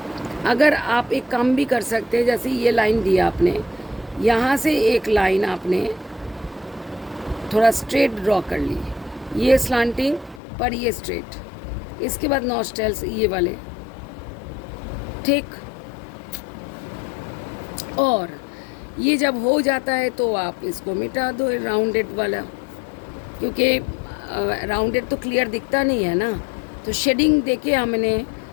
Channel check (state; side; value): drops out; right; at 10.4 s